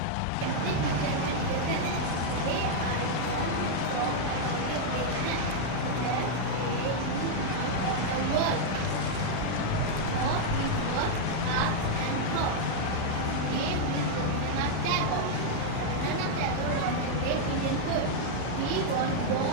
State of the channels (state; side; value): different; both; correlation -0.01